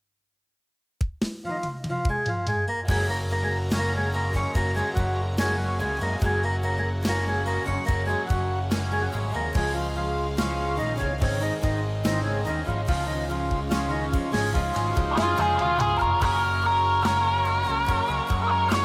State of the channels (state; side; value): identical; both; correlation 1.00